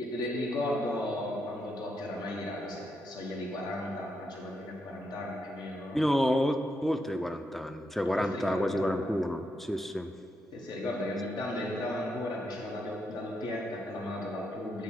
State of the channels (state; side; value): normal; both; correlation 0.81